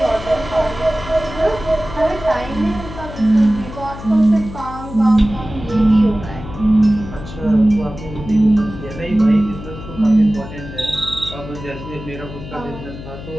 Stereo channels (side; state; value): left; noise; hum, 12 dB below the sound